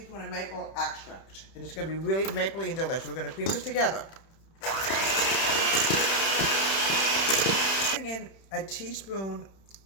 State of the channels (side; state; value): right; late; 31 ms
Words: of maple extract. And it's going to be really mapley and delicious. We're going to cream this together. Adding in a teaspoon